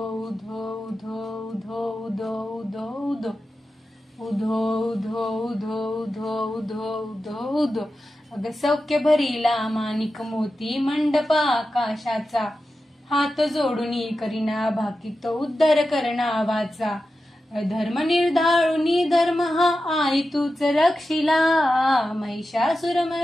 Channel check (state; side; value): normal; both; correlation 0.92